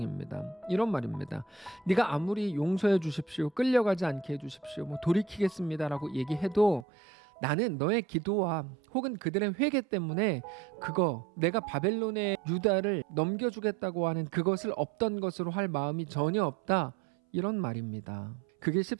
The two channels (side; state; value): left; drops out; at 6.9 s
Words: 이런 말입니다. 네가 아무리 용서해 주십시오, 끌려가지 않게 해주십시오, 뭐 돌이키겠습니다라고 얘기해도 나는 너의 기도와 혹은 그들의 회개 때문에 그거 내가 바벨론의 유다를 넘겨주겠다고 하는 그것을 없던 것으로 할 마음이 전혀 없다, 이런 말입니다. 그게